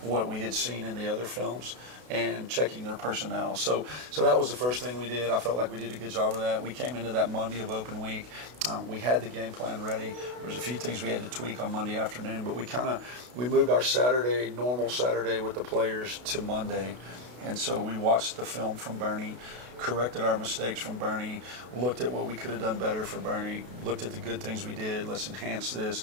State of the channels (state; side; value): late; left; 32 ms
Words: we had seen in the other films and checking their personnel. So that was the first thing we did. I felt like we did a good job of that. We came into that Monday of open week. We had the game plan ready. There was a few things we had to tweak on Monday afternoon, but we moved our Saturday, normal Saturday with the players to Monday. And so we watched the film from Bernie, corrected our mistakes from Bernie, looked at what we could have done better for Bernie, looked at the good things we did, let's enhance this.